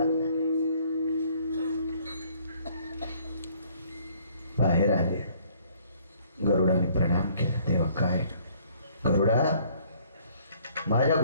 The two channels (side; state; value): both; inverted; correlation -0.60